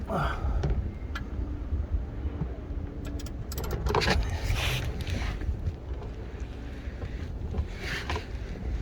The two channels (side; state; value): both; identical; correlation 1.00